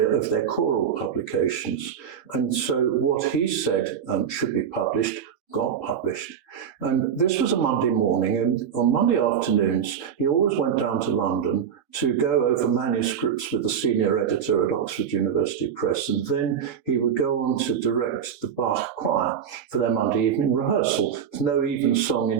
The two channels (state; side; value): quieter; left; 8.0 dB